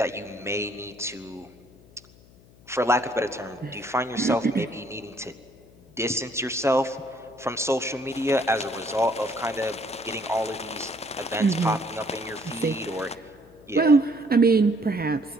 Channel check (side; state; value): left; noise; hum, 25 dB below the sound